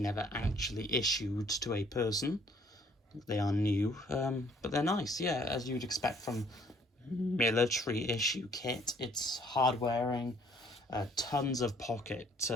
never actually issued to a person. They are new, but they're nice, yeah, as you'd expect from military issue kit. It's hard wearing, tons of pocket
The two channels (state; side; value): normal; both; correlation 0.60